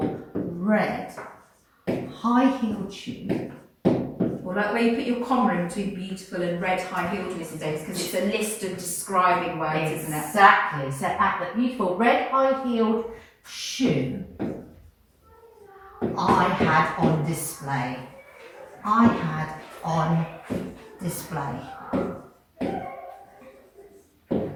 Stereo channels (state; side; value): identical; both; correlation 1.00